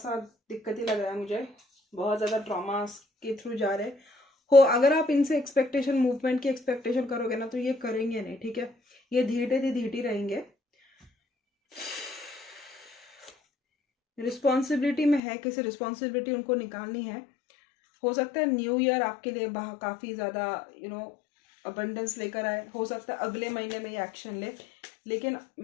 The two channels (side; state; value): right; drops out; at 15.2 s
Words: दिक्कत ही लग रहा है मुझे, बहुत ज़्यादा ट्रॉमा के थ्रू जा रहे हो। अगर आप इनसे एक्सपेक्टेशन, मूवमेंट की एक्सपेक्टेशन करोगे ना तो ये करेंगे नहीं, ठीक है। ये धीरे रहेंगे। रिस्पॉन्सिबिलिटी में है, किसी रिस्पॉन्सिबिलिटी उनको निकालनी है। हो सकता है न्यू ईयर आपके लिए काफ़ी ज़्यादा अबंडेंस लेकर आए, हो सकता है अगले महीने में ये एक्शन ले। लेकिन